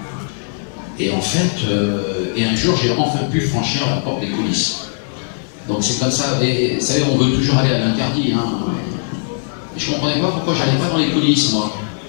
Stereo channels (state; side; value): silent; right; digital silence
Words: Et en fait, et un jour, j'ai enfin pu franchir la porte des coulisses. Donc c'est comme ça, et vous savez, on veut toujours aller à l'interdit. Hein. Et je comprenais pas pourquoi j'allais pas dans les coulisses, moi.